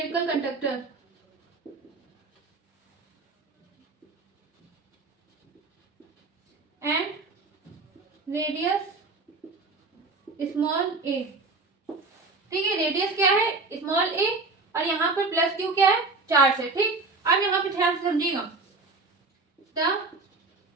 conductor and radius small a, ठीक है। रेडियस क्या है, स्मॉल ए, और यहाँ पर प्लस क्यू क्या है, चार्ज है, ठीक। अब यहाँ पे ध्यान से समझिएगा। The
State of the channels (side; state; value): left; quieter; 3.7 dB